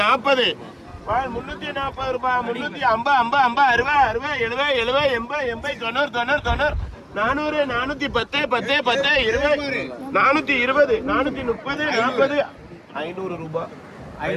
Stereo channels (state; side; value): identical; both; correlation 1.00